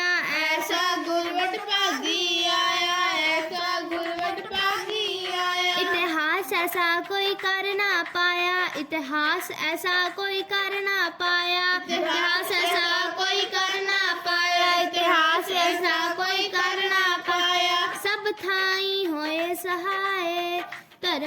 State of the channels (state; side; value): identical; both; correlation 1.00